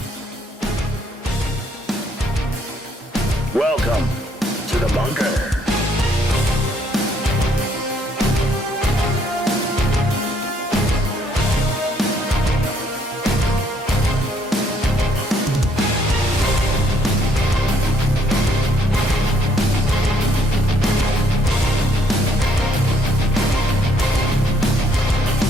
Welcome to the bunker.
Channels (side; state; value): both; normal; correlation 0.67